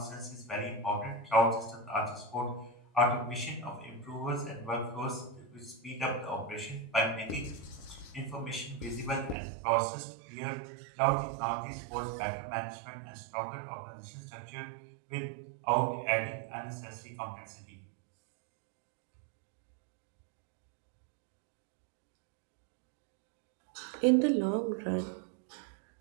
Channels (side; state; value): left; drops out; at 9.3 s